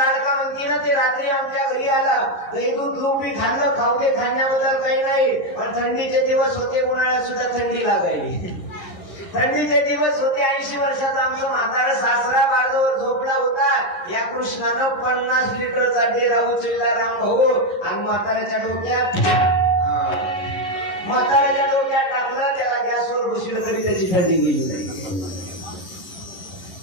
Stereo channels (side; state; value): right; late; 11 ms